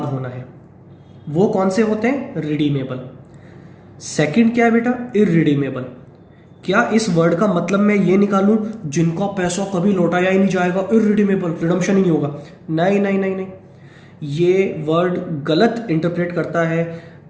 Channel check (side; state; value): both; identical; correlation 1.00